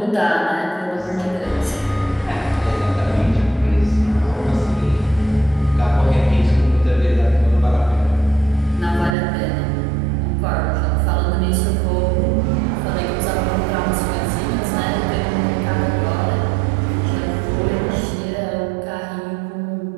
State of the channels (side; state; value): left; drops out; at 9.2 s